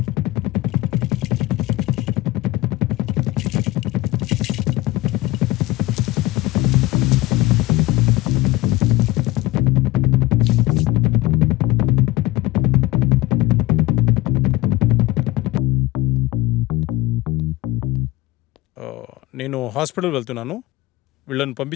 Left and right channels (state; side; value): quieter; right; 18.2 dB